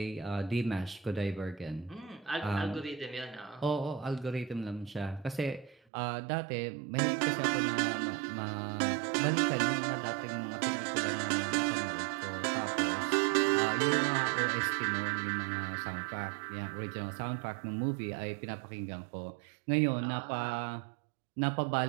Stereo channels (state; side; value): drops out; left; at 5.8 s